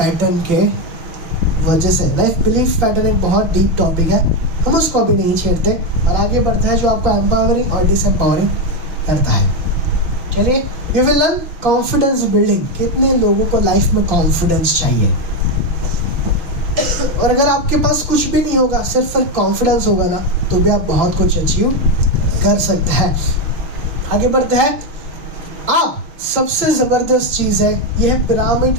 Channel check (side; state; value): left; late; 5.9 ms